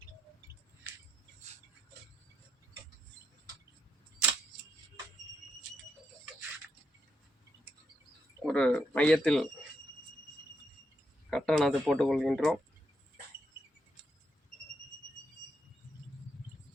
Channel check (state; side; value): normal; both; correlation 0.80